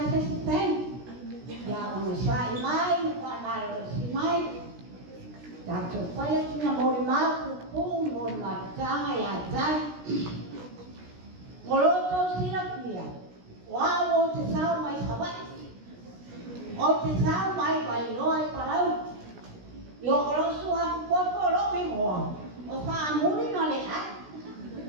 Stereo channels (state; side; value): late; left; 16 ms